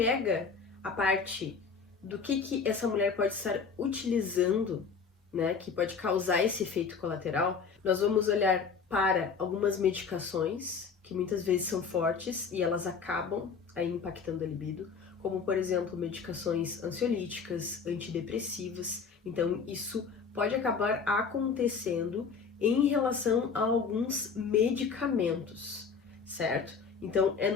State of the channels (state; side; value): quieter; right; 5.6 dB